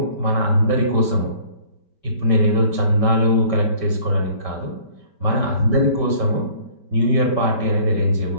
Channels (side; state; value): right; late; 5.2 ms